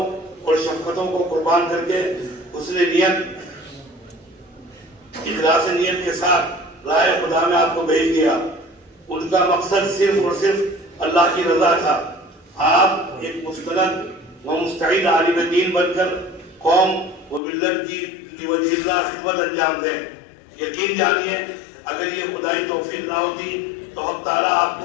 اور شفقتوں کو قربان کر کے حسن نیت، اخلاص نیت کے ساتھ راہ خدا میں آپ کو بھیج دیا۔ ان کا مقصد صرف اور صرف اللہ کی رضا تھا۔ آپ ایک مستند و مستعد عالم دین بن کر قوم و ملت کی وجہ اللہ خدمت انجام دیں۔ یقین جانیے اگر یہ خدائی توفیق نہ ہوتی تو حق تعالیٰ آپ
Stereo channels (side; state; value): right; drops out; at 17.4 s